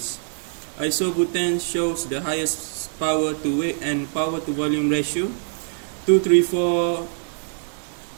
Isobutane shows the highest power to weight and power to volume ratio, 234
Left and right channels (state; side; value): silent; left; digital silence